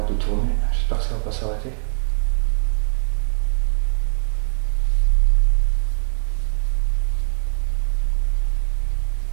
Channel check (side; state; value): left; silent; digital silence